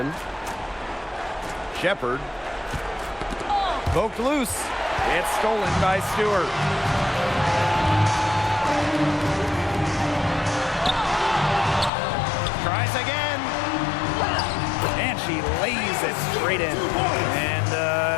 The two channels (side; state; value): right; drops out; at 11.9 s